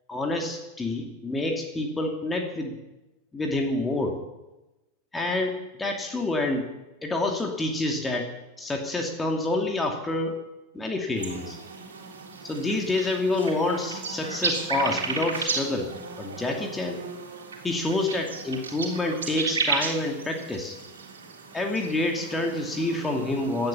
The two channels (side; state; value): both; normal; correlation 0.40